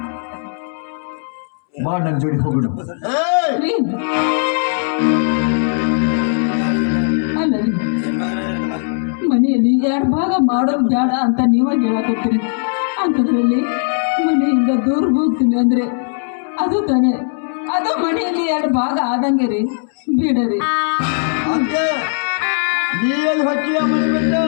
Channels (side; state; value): right; silent; 68 dB below the other